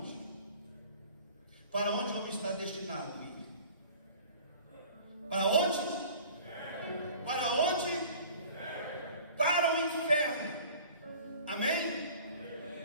Para onde o homem está destinado a ir? Para onde? Para onde? Para o inferno. Amém?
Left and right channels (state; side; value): inverted; both; correlation -0.46